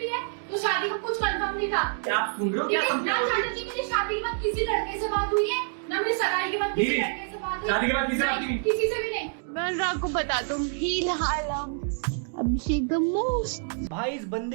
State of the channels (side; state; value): left; silent; digital silence